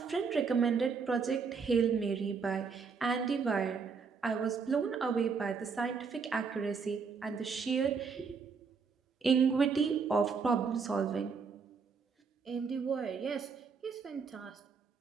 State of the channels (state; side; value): quieter; left; 5.4 dB